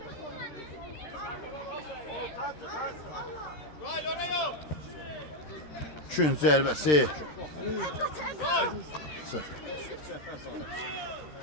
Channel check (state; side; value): late; right; 13 ms